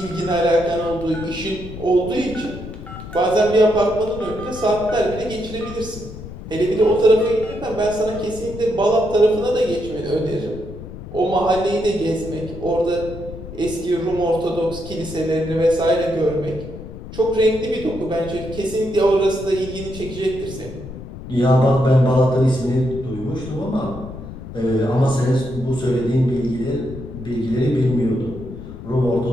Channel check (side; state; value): left; noise; rumble, 12 dB below the sound